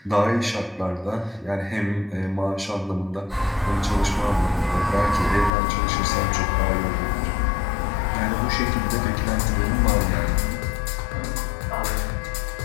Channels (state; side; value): drops out; right; at 5.5 s